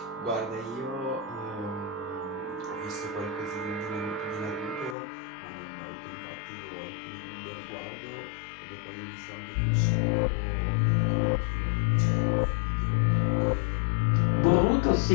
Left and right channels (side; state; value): right; drops out; at 5.0 s